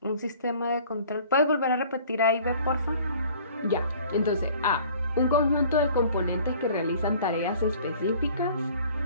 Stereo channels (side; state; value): both; inverted; correlation -0.51